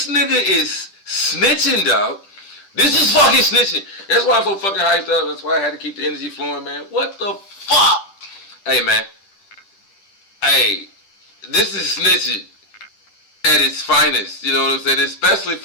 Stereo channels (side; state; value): right; late; 10 ms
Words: nigga is snitching, dog. This is fucking snitching. That's why I'm so fucking hyped up. That's why I had to keep the energy flowing, man. What the fuck? Hey, man. Hey, this is snitching at its finest. You know what I'm saying? Especially